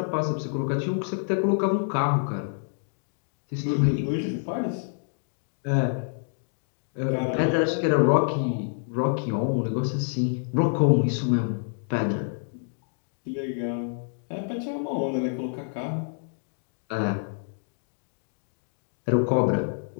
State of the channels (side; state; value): right; silent; digital silence